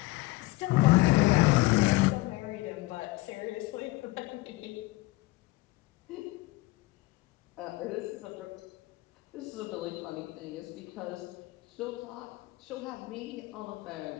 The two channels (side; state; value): right; quieter; 19.8 dB